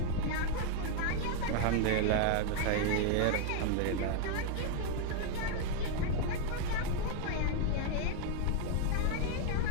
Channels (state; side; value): different; both; correlation 0.00